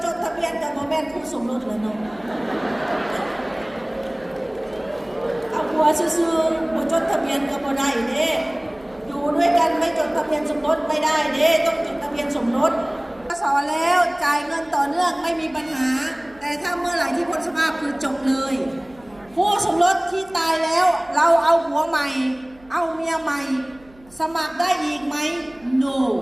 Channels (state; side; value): noise; right; hum, 27 dB below the sound